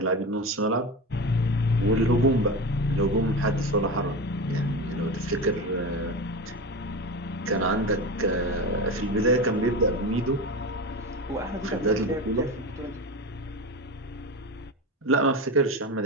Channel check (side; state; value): both; normal; correlation 0.25